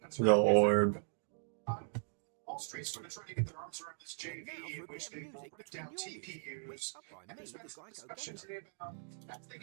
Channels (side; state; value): left; silent; digital silence